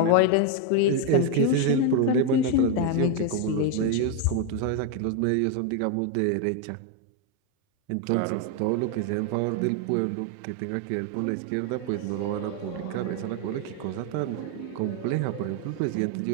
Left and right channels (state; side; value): different; both; correlation 0.01